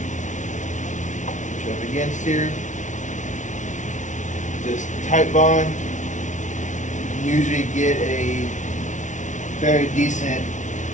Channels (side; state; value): right; late; 0.36 ms